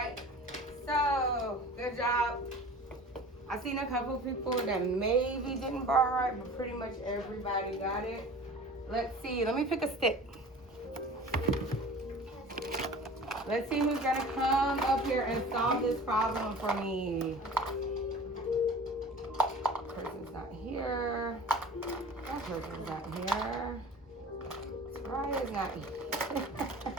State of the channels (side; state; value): both; normal; correlation 0.41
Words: so good job. I've seen a couple people that maybe didn't bar right, but pretty much everybody got it. Let's see, let me pick a stick. Let's see who's gonna come up here and solve this problem for me. Person's not here. That person's not here. Soraya's not here.